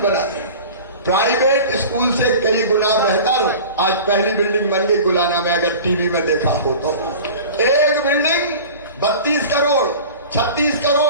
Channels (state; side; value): inverted; both; correlation -0.38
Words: रहे हैं, प्राइवेट स्कूल से कई गुना बेहतर। आज पहली बिल्डिंग बन गई गुलाना में, अगर टीवी में देखा हो तो। एक बिल्डिंग 32 करोड़, 36